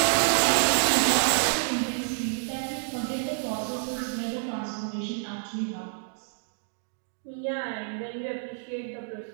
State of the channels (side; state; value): left; silent; digital silence